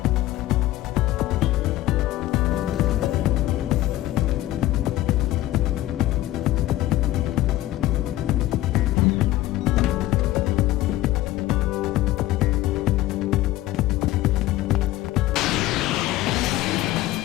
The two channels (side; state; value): right; quieter; 15.7 dB